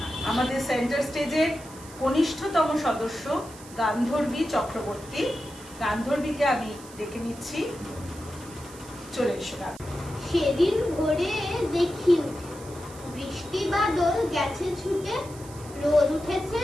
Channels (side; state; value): right; noise; hiss, 19 dB below the sound